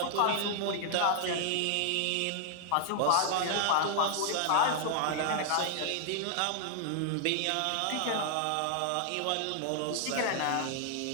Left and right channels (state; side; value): different; both; correlation -0.01